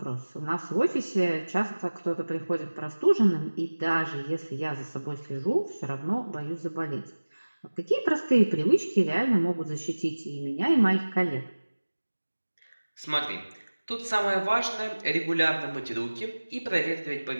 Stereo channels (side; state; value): both; inverted; correlation -1.00